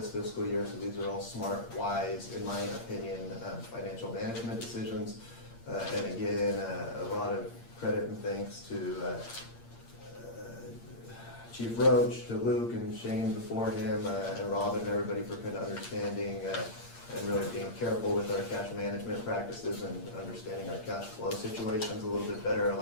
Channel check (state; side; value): late; right; 8.6 ms